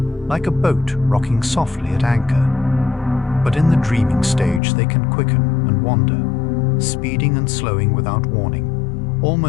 like a boat rocking softly at anchor. But in the dreaming stage they can quicken and wander, speeding and slowing without warning,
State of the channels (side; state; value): right; drops out; at 4.6 s